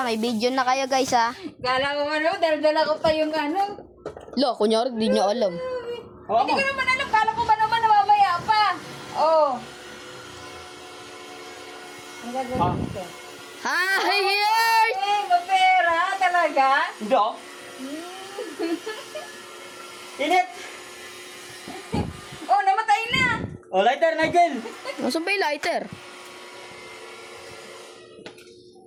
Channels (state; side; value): identical; both; correlation 1.00